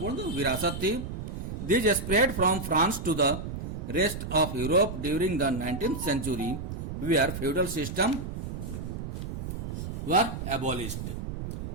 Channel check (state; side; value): noise; right; rumble, 6 dB below the sound